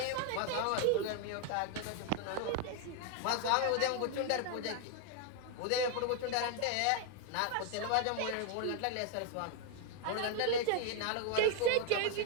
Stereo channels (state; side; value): different; both; correlation 0.00